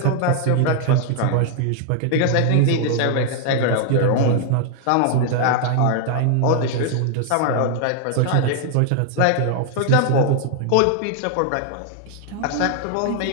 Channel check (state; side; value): different; both; correlation 0.00